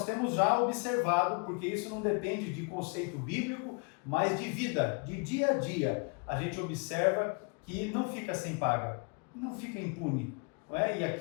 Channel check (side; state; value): right; quieter; 36.5 dB